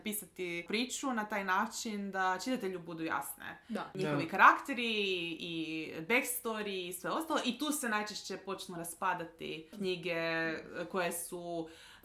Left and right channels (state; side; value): identical; both; correlation 1.00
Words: priču na taj način da čitatelju budu jasne. Njihovi karakteri i backstory i sve ostalo, i tu se najčešće počnu raspadati knjige koje su